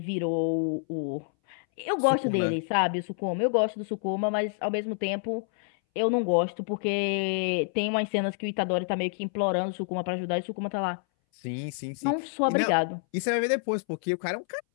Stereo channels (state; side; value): silent; right; 59 dB below the other